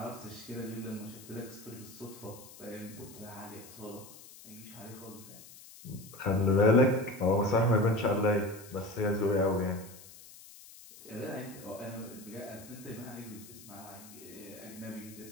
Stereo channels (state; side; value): noise; left; hiss, 18 dB below the sound